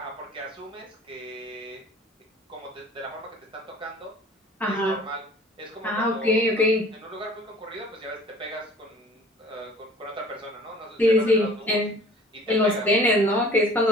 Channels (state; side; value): normal; both; correlation 0.49